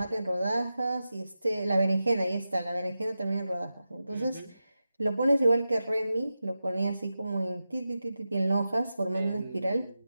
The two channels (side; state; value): both; inverted; correlation -0.91